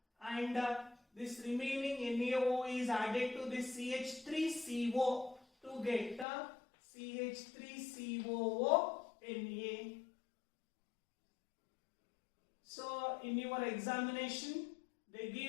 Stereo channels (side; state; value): right; drops out; at 6.2 s